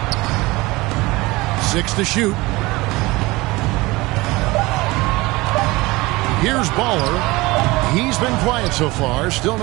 6 to shoot. Here's Baller. He's been quiet so far. Still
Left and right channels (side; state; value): left; quieter; 21.7 dB